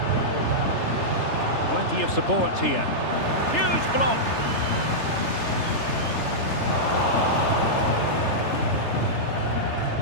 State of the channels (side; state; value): right; late; 3.3 ms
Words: Plenty of support here. Huge block.